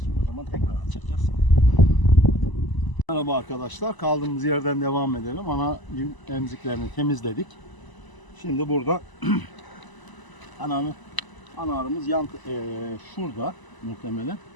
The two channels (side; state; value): right; late; 1.0 ms